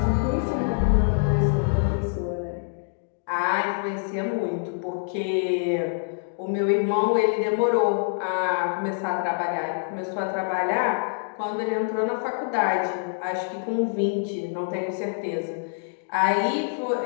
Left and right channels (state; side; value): silent; right; digital silence